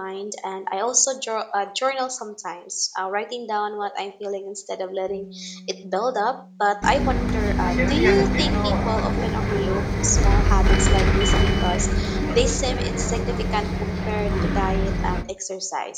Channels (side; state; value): both; identical; correlation 1.00